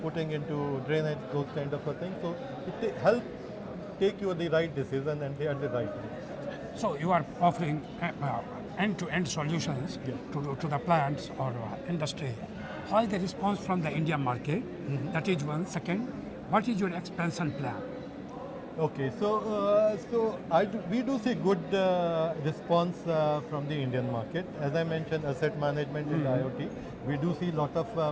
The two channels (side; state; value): both; identical; correlation 1.00